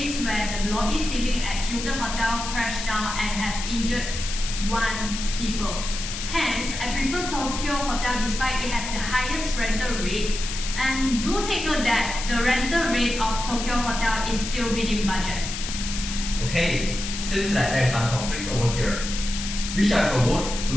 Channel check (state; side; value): noise; left; hiss, 6 dB below the sound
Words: where the lobby ceiling at Hilton Hotel crashed down and has injured one people. Hence, I prefer Tokyo Hotel despite it has the highest rental rate. And do take note that the rental rate of Tokyo Hotel is still within budget. Okay, seems like there is some conflicts over here. We shall have a vote